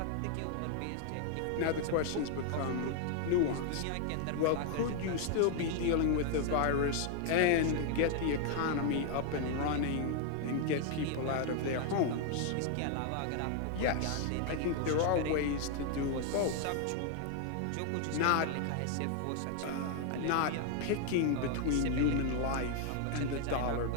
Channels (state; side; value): different; both; correlation 0.00